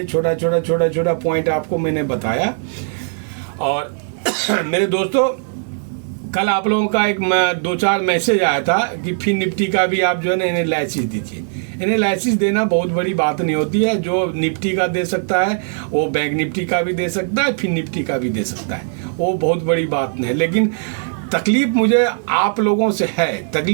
छोटा छोटा पॉइंट आपको मैंने बताया। और मेरे दोस्तों, कल आप लोगों का एक 2-4 मैसेज आया था कि फिर निफ्टी का भी आप जो है ना एनालिसिस दीजिए। एनालिसिस देना बहुत बड़ी बात नहीं होती है। जो निफ्टी का दे सकता है वो बैंक निफ्टी का भी दे सकता है, फिर निफ्टी का भी दे सकता है, वो बहुत बड़ी बात नहीं है। लेकिन तकलीफ मुझे आप लोगों से है।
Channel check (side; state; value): left; silent; 67 dB below the other